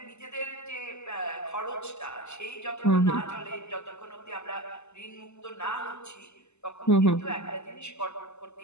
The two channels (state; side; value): late; right; 0.82 ms